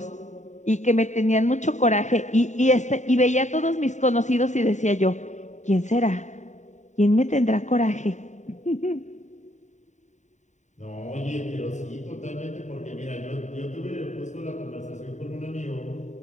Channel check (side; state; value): right; late; 0.34 ms